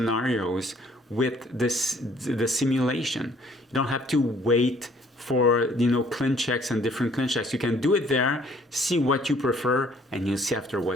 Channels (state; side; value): normal; both; correlation 0.60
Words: with the simulation. You don't have to wait for, clean checks and different clean checks. You can do it there, see what you prefer, and you'll see after